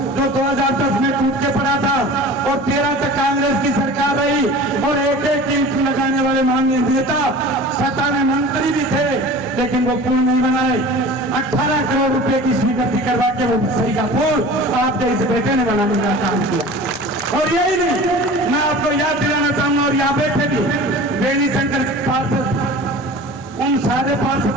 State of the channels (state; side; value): normal; both; correlation 0.39